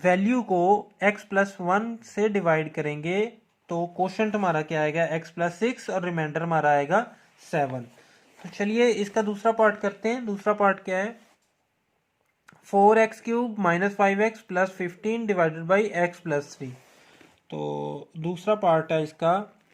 को x प्लस 1 से डिवाइड करेंगे तो कोशंट हमारा क्या आएगा x प्लस 6 और रिमाइंडर हमारा आएगा 7। तो चलिए इसका दूसरा पार्ट करते हैं। दूसरा पार्ट क्या है, 4x³ minus 5x plus 15 divided by x plus 3। तो दूसरा पार्ट है इसका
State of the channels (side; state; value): both; identical; correlation 1.00